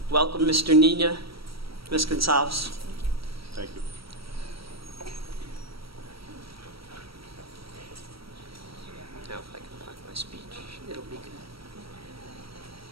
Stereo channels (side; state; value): left; late; 0.75 ms